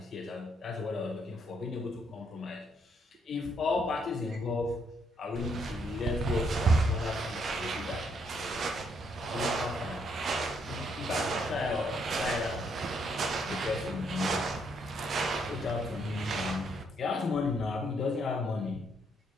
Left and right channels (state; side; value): normal; both; correlation 0.73